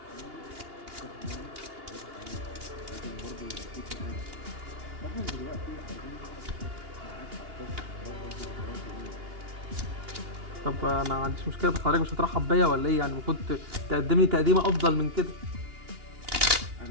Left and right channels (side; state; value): left; late; 2.8 ms